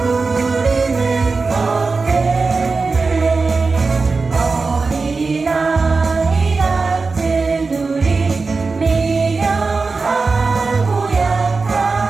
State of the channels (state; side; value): quieter; left; 4.2 dB